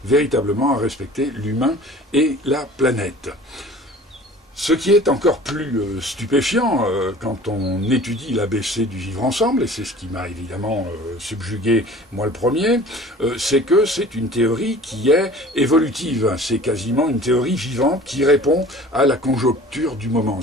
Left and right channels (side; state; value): both; normal; correlation 0.45